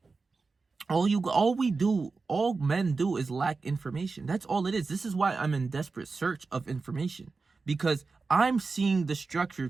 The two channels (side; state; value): left; quieter; 4.2 dB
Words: all men do is lack information. That's all it is. This is why I'm in desperate search of information, because I'm seeing the structure